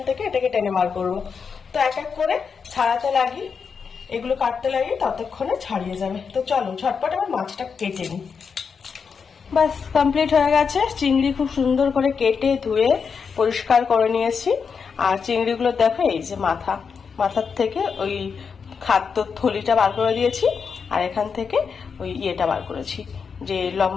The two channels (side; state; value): right; quieter; 5.9 dB